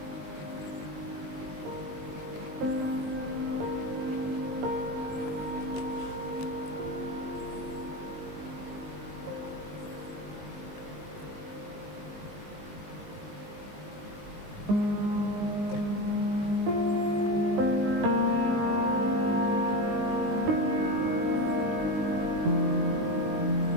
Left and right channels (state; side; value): late; left; 20 ms